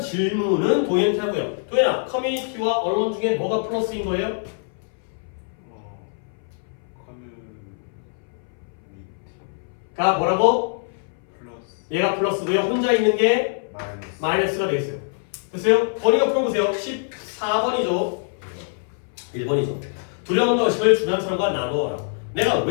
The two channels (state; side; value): silent; right; 59 dB below the other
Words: 도현한테 하고요. 도현아, 커뮤니티와 alone 중에 뭐가 플러스인 거예요? 커뮤니티 가 뭐라고? 플러스 얘가 플러스고요. 혼자 있는 게 마이너스 마이너스가 되겠어요. 됐어요? 번이가 풀어보세요. 14번이죠. 1번이죠. 두려움과 의심을 주변 사람과 나누어라. 내가